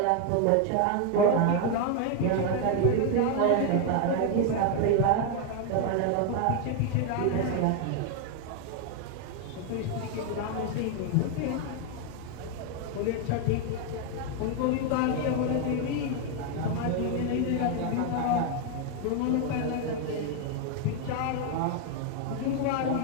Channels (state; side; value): different; both; correlation 0.01